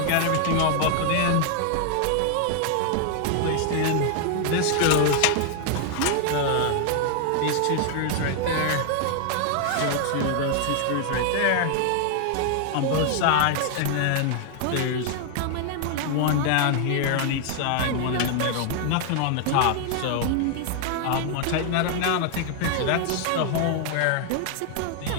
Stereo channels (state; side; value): different; both; correlation 0.00